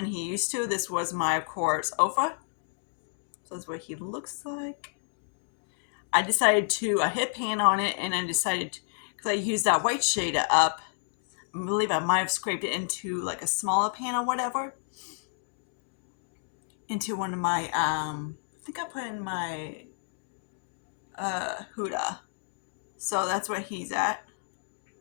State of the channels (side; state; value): right; silent; digital silence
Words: he used to. This was my, of course, Ofa. So that's what he looks like. I decided to hit pan on it, and I decided, because I used that white shade up, I believe I might have scraped it into like a smaller pan or whatever, into one of my, I think I put in my Huda. So that's where he's at.